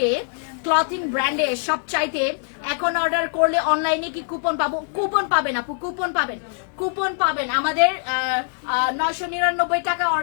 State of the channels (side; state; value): right; silent; 64 dB below the other